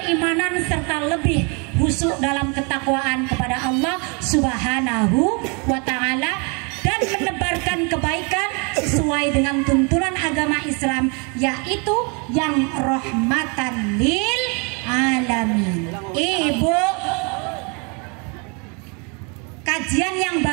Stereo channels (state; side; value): quieter; left; 33.7 dB